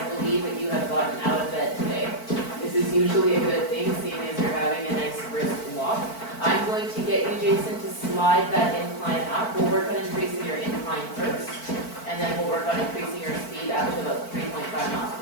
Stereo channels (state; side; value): late; right; 4.5 ms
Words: believe that you have gotten out of bed today. This is usually a good thing, seeing as you're having a nice brisk walk. I'm going to get you, Jason, to slide that incline up. We'll work on increasing your incline first, and then we'll work on increasing your speed up to about 3.5 miles